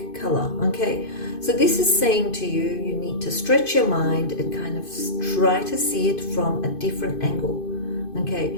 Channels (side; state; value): right; late; 2.5 ms